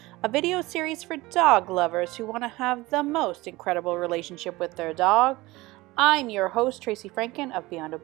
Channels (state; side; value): quieter; left; 20.4 dB